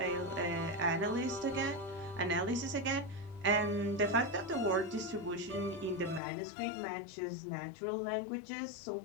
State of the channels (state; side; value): drops out; right; at 6.2 s